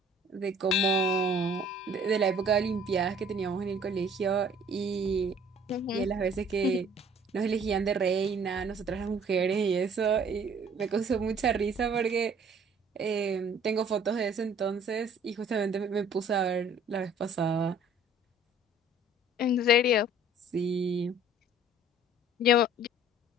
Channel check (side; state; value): both; normal; correlation 0.54